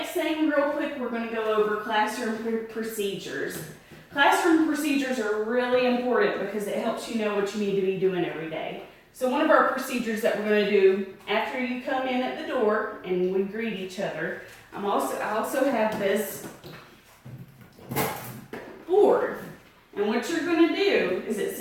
thing real quick, we're gonna go over classroom procedures. Classroom procedures are really important because it helps you know what you need to be doing every day. So one of our procedures that we're gonna do after you come in at the door and we greet each other, I also have this board. And what you're going to do is it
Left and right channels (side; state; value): both; identical; correlation 1.00